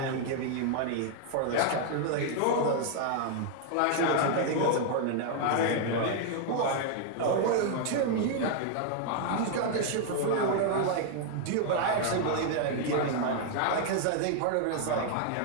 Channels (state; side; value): different; both; correlation 0.00